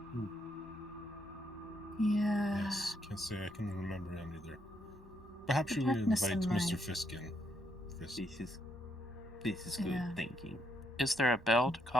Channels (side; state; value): both; normal; correlation 0.75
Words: Yeah. Yes, can't say I can remember any either. Perhaps The you darkness invite in Mr. my- Fisk in. Fisk. This is good Yeah. thinking. Is there a bell to